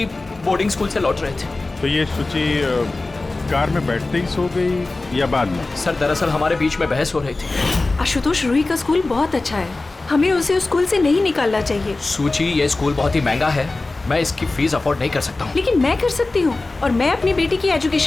बोर्डिंग स्कूल से लौट रहे थे। तो ये सुची कार में बैठते ही सो गई या बाद में? सर, दरअसल हमारे बीच में बहस हो रही थी। आशुतोष, रूही का स्कूल बहुत अच्छा है, हमें उसे उस स्कूल से नहीं निकालना चाहिए। सुची, ये स्कूल बहुत ही महंगा है, मैं इसकी फीस अफोर्ड नहीं कर सकता हूँ। लेकिन मैं कर सकती हूँ, और मैं अपनी बेटी की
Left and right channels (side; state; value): right; quieter; 3.3 dB